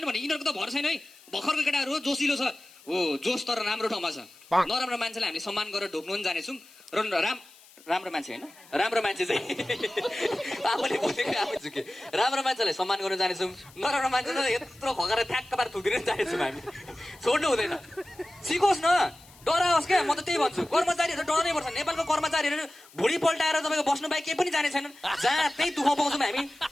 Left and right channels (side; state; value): left; noise; hiss, 24 dB below the sound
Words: नि भने यिनीहरूको त भर छैन है भर्खरको केटाहरू हो जोसिलो छ हो जोस तर राम्रो ठाउँमा छ नराम्रो मान्छेलाई हामीले सम्मान गरेर ढोक्नु पनि जानेछौँ र राम्रो मान्छे होइन राम्रो मान्छे चाहिँ आफूले बोलेको आफै झुके राम्रो मान्छेलाई सम्मान गर्न जानेछौँ नराम्रो मान्छेलाई यत्रो खगेर ठ्याक्क पार थुकिदिन जानेछौँ हामी छोड्नु हुँदैन सिकोस् न डराओस् क्या म त त्यही भन्छु कर्मचारीहरू डराउनै पर्छ नेपालको कर्मचारीहरू भुँडी पल्टाएर तपाईँको बस्नु बाहेक केही पनि जाने छैनन् जहाँ त्यही दुःख पाउँछौँ हामी